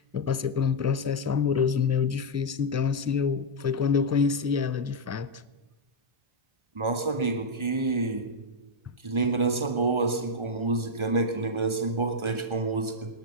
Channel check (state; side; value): late; left; 1.4 ms